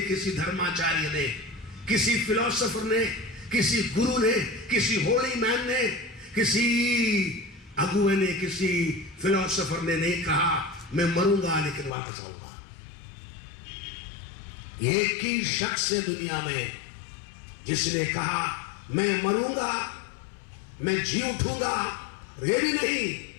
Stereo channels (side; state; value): right; drops out; at 11.9 s